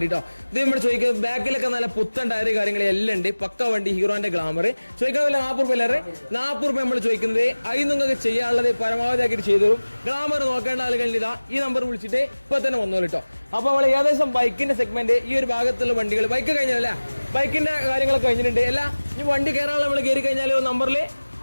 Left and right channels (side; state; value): both; inverted; correlation -1.00